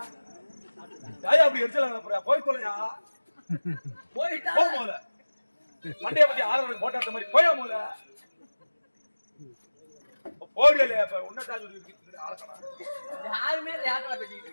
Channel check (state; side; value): inverted; both; correlation -1.00